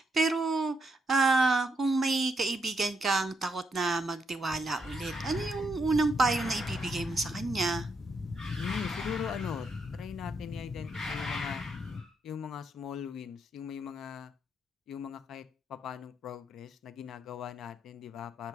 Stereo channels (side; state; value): both; normal; correlation 0.79